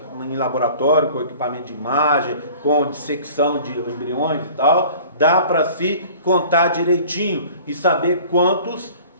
em laboratório, com equipamento de imagem, com dissecção de embriões e tal, dá para se contar direitinho e saber quantos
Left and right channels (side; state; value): both; inverted; correlation -0.47